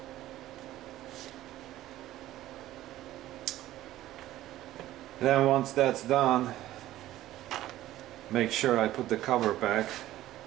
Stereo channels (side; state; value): left; quieter; 14.6 dB